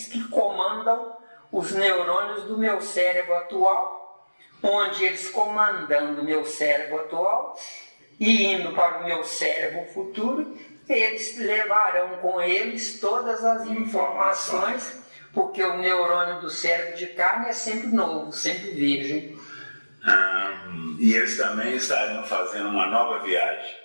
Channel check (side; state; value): both; inverted; correlation -1.00